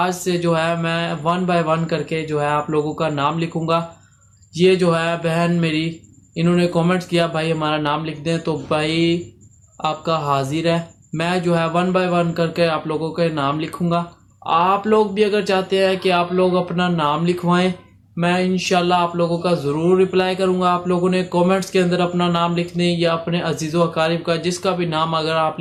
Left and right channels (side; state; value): both; identical; correlation 1.00